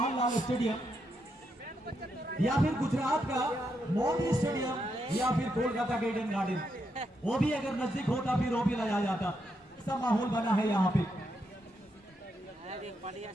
स्टेडियम या फिर गुजरात का मोदी स्टेडियम या फिर कोलकाता के ईडन गार्डन, वो भी अगर नजदीक होता फिर वो भी लाया जाता। ऐसा माहौल बना है यहाँ पे।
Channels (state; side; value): normal; both; correlation 0.81